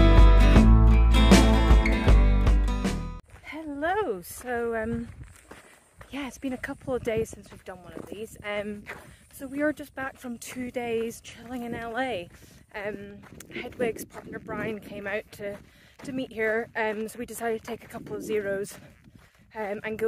Hello, so yeah, it's been a couple of days since we've done one of these. So we are just back from 2 days chilling in LA. Hedwig's partner Brian came out to meet here, so we decided to take a couple of zeros and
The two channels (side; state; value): both; identical; correlation 1.00